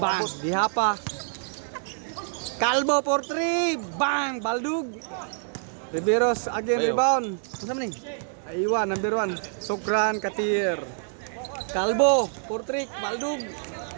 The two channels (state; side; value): silent; left; digital silence